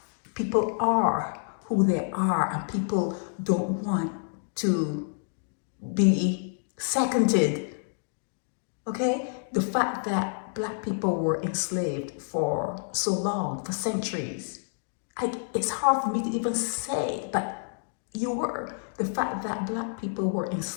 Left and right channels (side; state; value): right; silent; digital silence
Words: People are who they are, and people don't want to be seconded. Okay? The fact that black people were enslaved for so long, for centuries, it's hard for me to even say, but you were. The fact that black people were